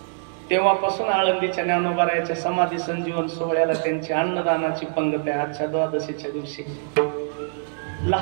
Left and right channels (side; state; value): left; silent; digital silence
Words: तेव्हापासून आळंदीच्या ज्ञानोबारायाच्या समाधी संजीवन सोहळ्याला त्यांची अन्नदानाची पंगत आहे. आजच्या द्वादशीच्या दिवशी